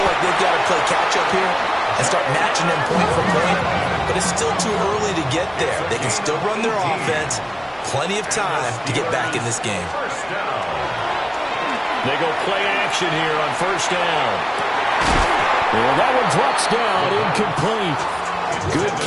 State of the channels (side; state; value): both; identical; correlation 1.00